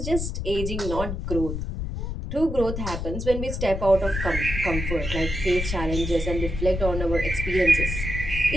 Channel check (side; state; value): left; noise; rumble, 4 dB below the sound